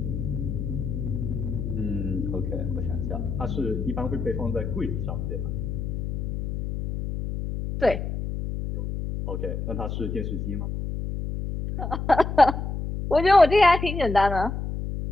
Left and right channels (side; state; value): left; noise; hum, 4 dB below the sound